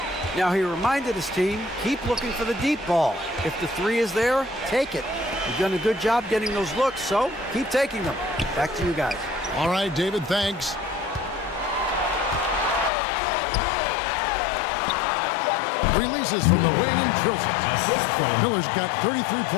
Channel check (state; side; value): drops out; right; at 12.9 s